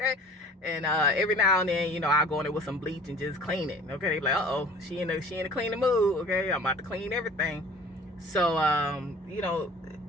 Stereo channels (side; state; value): both; normal; correlation 0.46